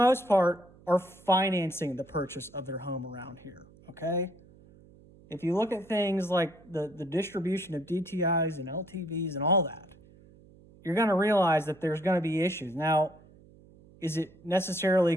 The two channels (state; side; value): noise; right; hum, 25 dB below the sound